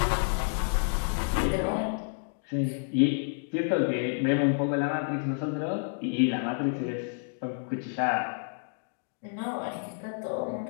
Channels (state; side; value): silent; right; digital silence